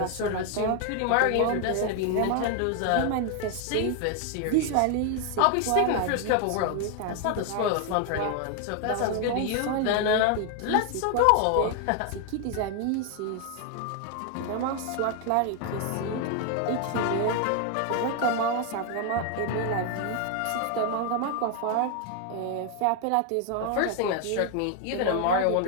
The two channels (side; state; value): both; different; correlation 0.01